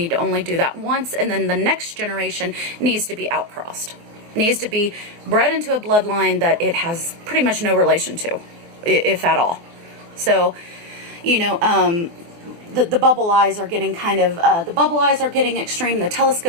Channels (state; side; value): late; left; 23 ms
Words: to only do that once, and then the next generation needs to be outcrossed. Needs to be bred into a bloodline that it has pretty much no relation to, if at all. So, you know, the bubble eyes are getting kind of, the bubble eyes are getting extreme, the